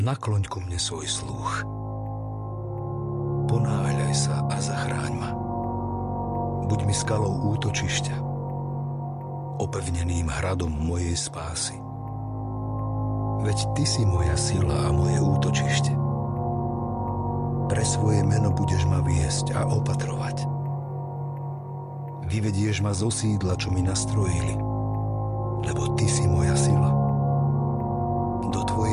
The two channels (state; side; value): identical; both; correlation 1.00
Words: ku mne svoj sluch. Ponáhľaj sa a zachráň ma. Buď mi skalou útočišťa, opevneným hradom mojej spásy. Veď Ty si moja sila a moje útočište. Pre svoje meno budeš ma viesť a opatrovať. Vyvedieš ma zo sídla, čo mi nastrojili, lebo Ty si moja sila. Do